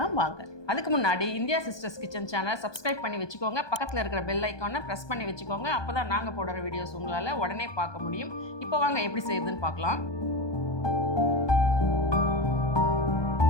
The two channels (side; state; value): right; late; 1.2 ms